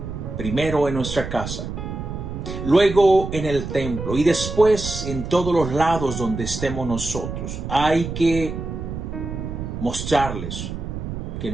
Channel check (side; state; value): right; noise; rumble, 6 dB below the sound